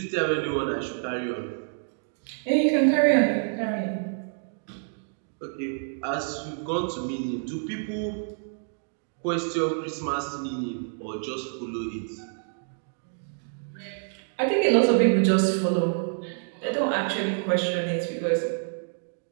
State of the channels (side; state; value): left; silent; digital silence